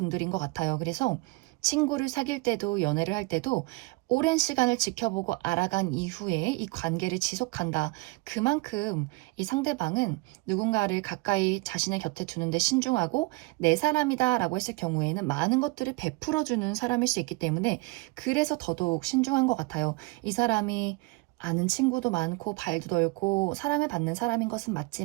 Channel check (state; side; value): quieter; left; 24.6 dB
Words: 것 같아요. 그래서 친구를 사귈 때도 연애를 할 때도 오랜 시간을 지켜보고 알아간 이후에 이 관계를 지속한다. 그만큼 이 상대방은 누군가를 가까이 자신의 곁에 두는데 신중하고 내 사람이다 라고 했을 경우에는 많은 것들을 베풀어주는 사람일 수 있기 때문에 그래서 더더욱 신중한 것 같아요. 이 사람이 아는 친구도 많고 발도 넓고 사랑을 받는 사람인 것은